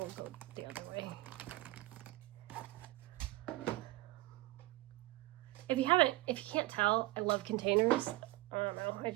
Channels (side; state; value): left; quieter; 19.3 dB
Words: go the other way. If you can't tell, I love containers. I don't know,